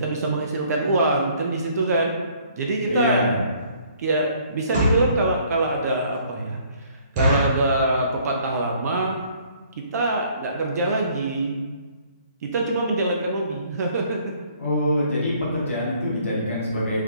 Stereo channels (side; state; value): both; inverted; correlation -0.61